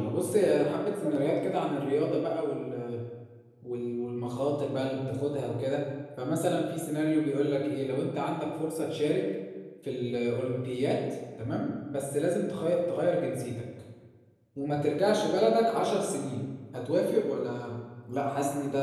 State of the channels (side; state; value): both; identical; correlation 1.00